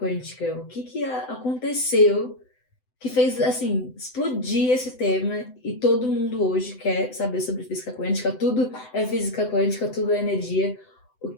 O que aconteceu que fez, assim, explodir esse tema e todo mundo hoje quer saber sobre física quântica? Tudo é física quântica, tudo é energia. O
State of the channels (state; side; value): late; right; 7.9 ms